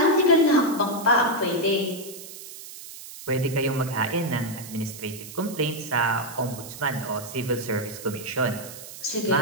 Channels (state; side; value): noise; right; hiss, 14 dB below the sound